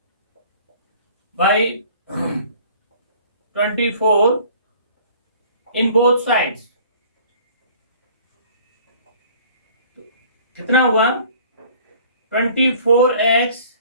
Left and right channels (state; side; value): inverted; both; correlation -0.51